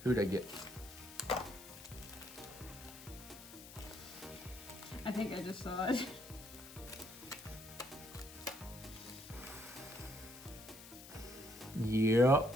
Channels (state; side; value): noise; left; hiss, 15 dB below the sound